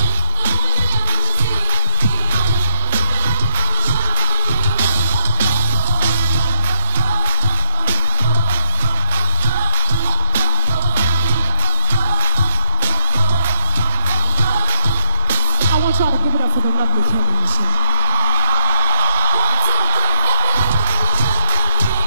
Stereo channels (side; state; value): both; inverted; correlation -0.53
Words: I want y'all to give it up for the lovely Kelly and Michelle.